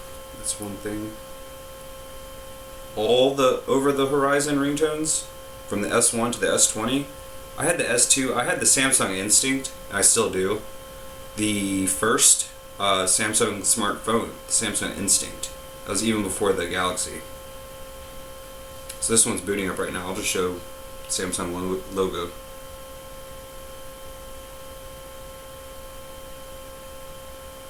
one thing. All the over the horizon ringtones, from the S1 to the S20. I had the S2, I had the Samsung Instinct, I still do. The first Samsung smartphone, the Samsung Instinct. That was even before the Galaxy. So this one's booting up right now. I'll just show Samsung logo.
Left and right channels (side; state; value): both; identical; correlation 1.00